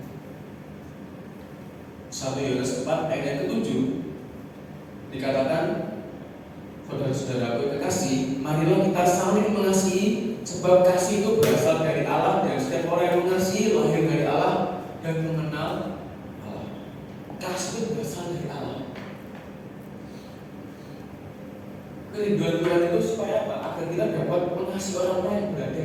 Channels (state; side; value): identical; both; correlation 1.00